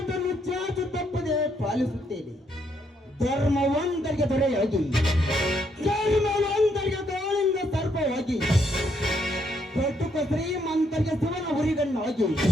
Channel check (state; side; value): normal; both; correlation 0.73